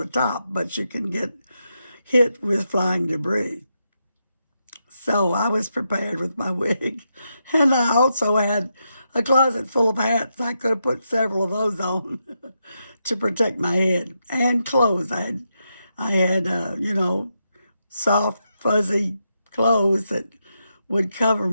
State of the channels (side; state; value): both; inverted; correlation -0.84